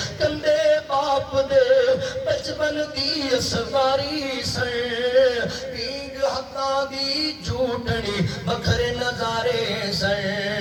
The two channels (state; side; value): identical; both; correlation 1.00